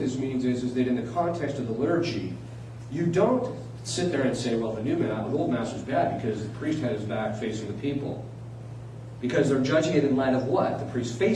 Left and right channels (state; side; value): identical; both; correlation 1.00